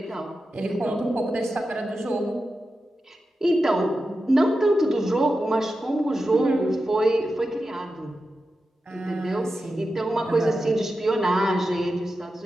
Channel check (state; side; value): normal; both; correlation 0.91